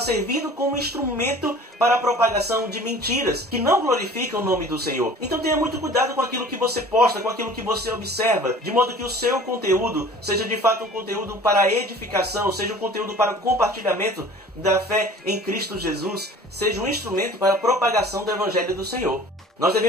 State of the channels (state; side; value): normal; both; correlation 0.45